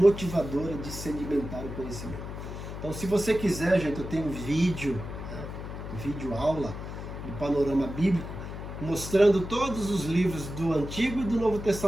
de sedimentar o conhecimento. Então, se você quiser, gente, eu tenho um vídeo, vídeo aula do Panorama Bíblico, mostrando todos os livros do Antigo e do Novo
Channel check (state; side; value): noise; left; hum, 8 dB below the sound